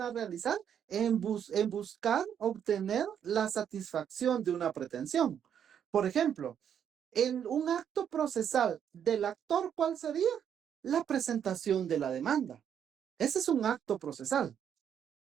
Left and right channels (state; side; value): quieter; left; 8.7 dB